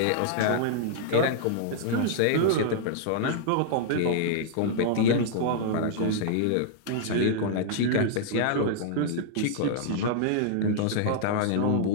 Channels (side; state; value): both; different; correlation -0.01